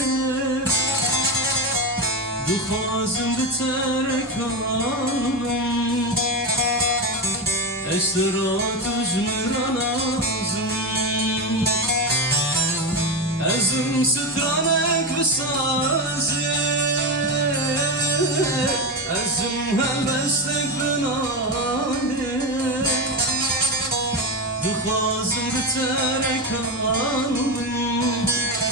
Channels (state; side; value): normal; both; correlation 0.16